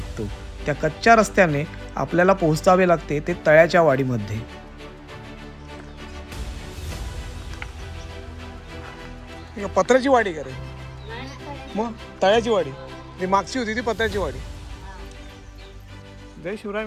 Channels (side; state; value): both; identical; correlation 1.00